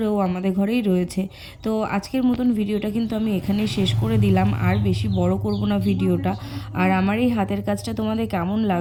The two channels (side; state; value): both; identical; correlation 1.00